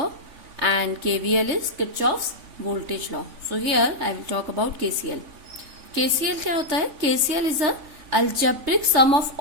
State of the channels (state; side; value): late; left; 3.6 ms